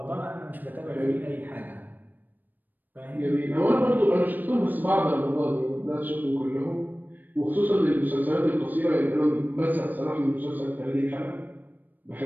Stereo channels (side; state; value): left; late; 0.088 ms